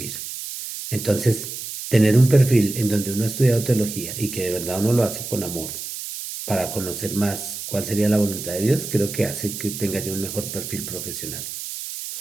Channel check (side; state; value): right; noise; hiss, 8 dB below the sound